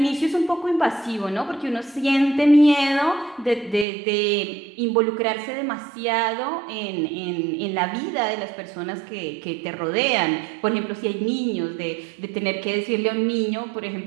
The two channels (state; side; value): drops out; left; at 3.9 s